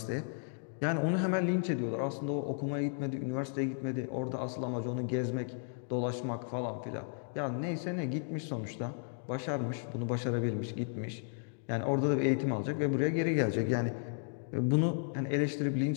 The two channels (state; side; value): silent; right; digital silence